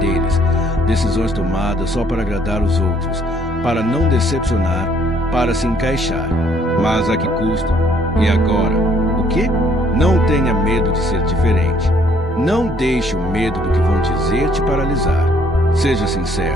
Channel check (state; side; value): normal; both; correlation 0.64